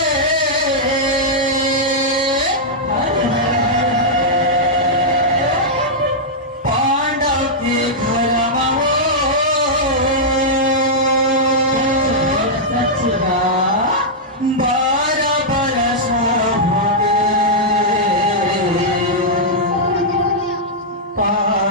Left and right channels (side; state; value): both; normal; correlation -0.08